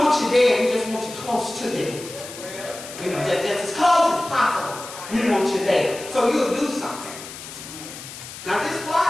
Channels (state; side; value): noise; left; hiss, 13 dB below the sound